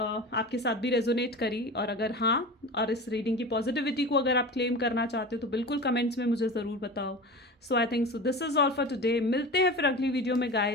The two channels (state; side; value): normal; both; correlation 0.31